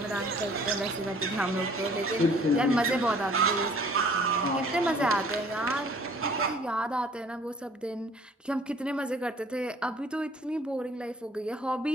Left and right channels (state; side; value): normal; both; correlation 0.54